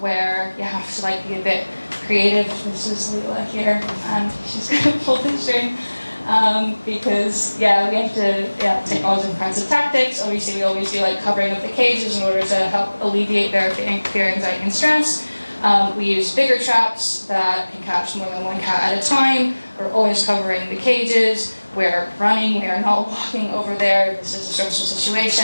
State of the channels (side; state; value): both; inverted; correlation -1.00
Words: you have to like be a bit creative. This is Leela here, and she's gonna pull the string. Because we have to take all different kinds of tactics. Obviously, we always do like covering up the cages in order to help alleviate their fear, anxiety, and stress. We use bigger traps that can catch more than one cat at a time. We're always covering the cages. We're running. We are not walking over there. This is a stressful